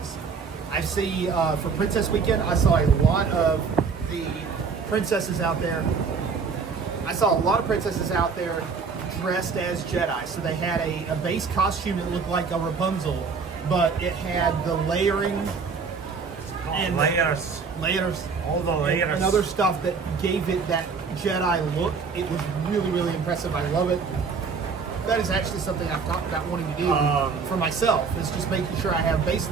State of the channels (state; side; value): quieter; left; 5.3 dB